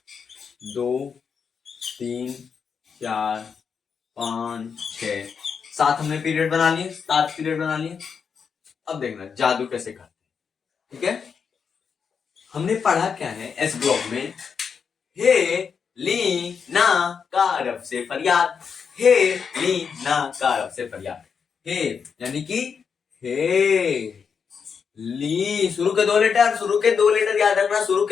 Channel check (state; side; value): quieter; right; 6.3 dB